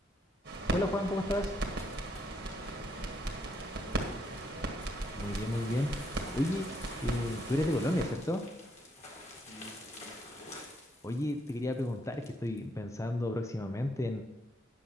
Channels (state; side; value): normal; both; correlation 0.74